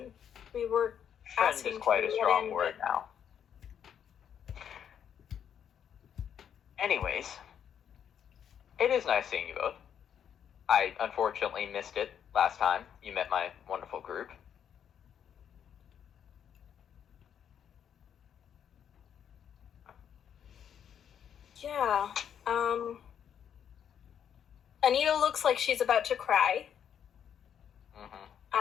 we were Friend asking is quite to a get strong in, word now. Anyways, it is nice seeing you both. I unfortunately missed it last time you met my wonderful group. Yeah. Anita looks like she's about to cry.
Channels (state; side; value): quieter; right; 8.7 dB